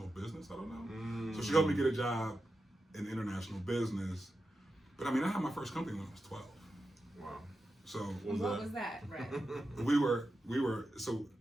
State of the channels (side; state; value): both; normal; correlation 0.90